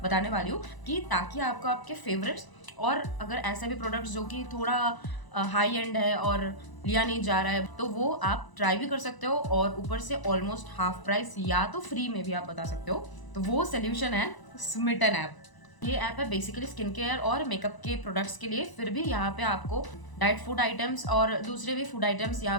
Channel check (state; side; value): late; right; 1.0 ms